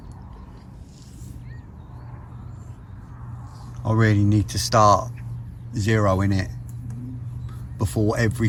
I really need to start zeroing it before every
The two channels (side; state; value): both; identical; correlation 1.00